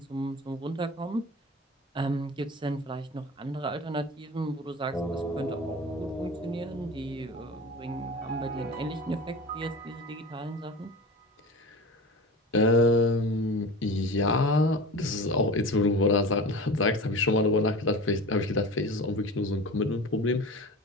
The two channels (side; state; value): both; normal; correlation 0.33